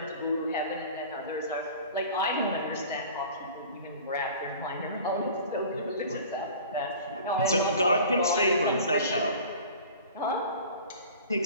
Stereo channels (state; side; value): inverted; both; correlation -0.42